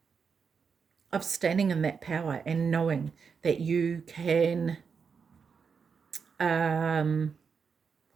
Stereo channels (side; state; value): left; quieter; 5.9 dB